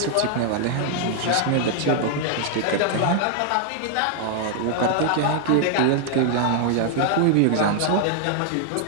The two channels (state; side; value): different; both; correlation 0.00